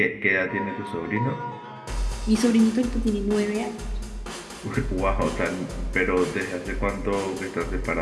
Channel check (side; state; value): both; identical; correlation 1.00